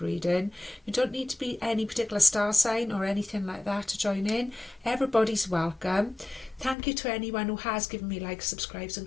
reading. You don't need to be any particular star sign or anything like that to join in. Everybody's welcome. Thank you to anyone who has given me likes, subscribes and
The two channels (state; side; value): drops out; right; at 6.8 s